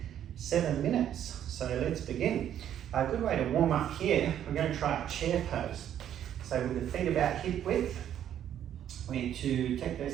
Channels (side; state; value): left; quieter; 10.4 dB